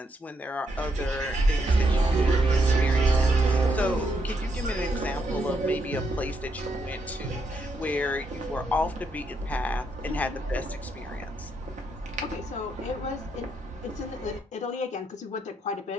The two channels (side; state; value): both; normal; correlation 0.78